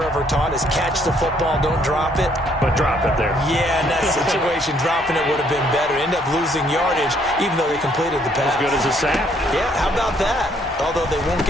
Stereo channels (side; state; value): both; normal; correlation 0.67